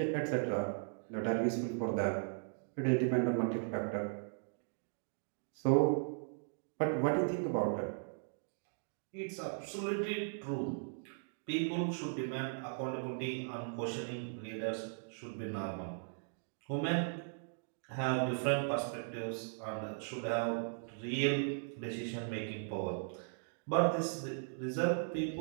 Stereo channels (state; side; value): silent; left; digital silence